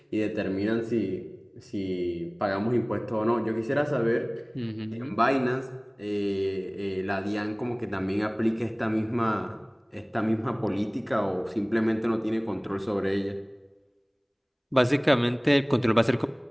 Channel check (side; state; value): both; identical; correlation 1.00